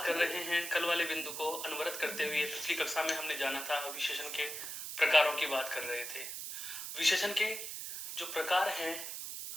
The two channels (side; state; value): right; noise; hiss, 6 dB below the sound